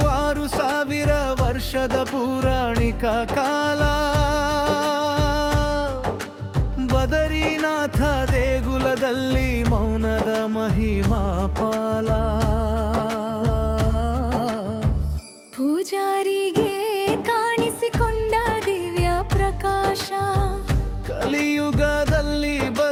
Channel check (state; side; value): identical; both; correlation 1.00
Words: 6000 ವರ್ಷದ ಪೌರಾಣಿಕ ಕಾಲ. ಬದರಿನಾಥ ದೇಗುಲದಲ್ಲಿ ಮೌನದ ಮಹಿಮಾ ಪಾಲ. ಪೂಜಾರಿಗೆ ಕಾಣಿಸಿಕೊಂಡ ದಿವ್ಯ ಪ್ರಕಾಶ. ಕಲಿಯುಗದಲ್ಲಿ